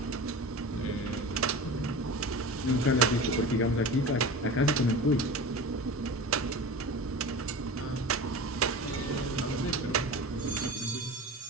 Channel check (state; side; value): normal; both; correlation 0.32